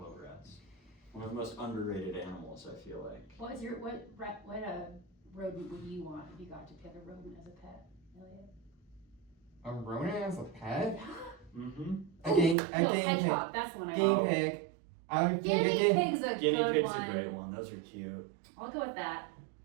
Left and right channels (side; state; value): left; drops out; at 12.6 s